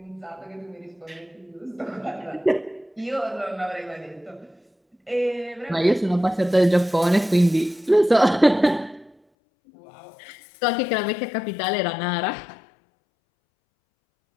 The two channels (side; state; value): right; drops out; at 9.2 s